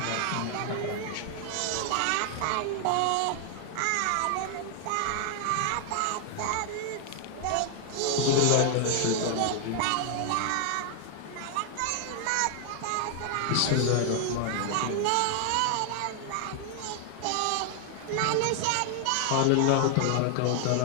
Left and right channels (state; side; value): different; both; correlation 0.00